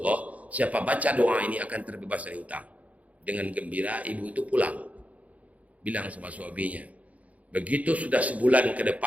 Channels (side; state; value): left; late; 0.069 ms